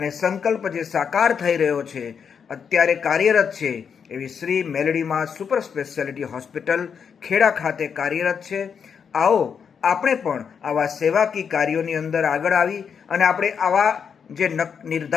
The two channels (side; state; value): right; quieter; 6.8 dB